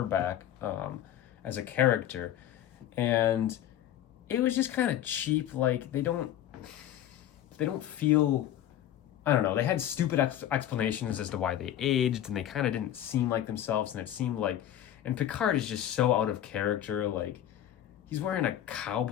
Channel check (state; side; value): quieter; right; 11.6 dB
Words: back as a character, and it was just kind of cheap. Like they don't feel, I don't know. They had stupid explanations as to why they aged, and they kind of didn't seem like themselves, and it seemed like, and Picard is just so out of character. Like he's wearing a